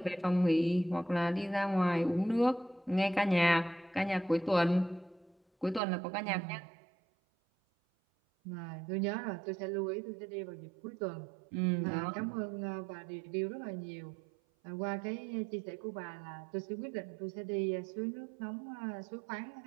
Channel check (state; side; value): drops out; left; at 5.8 s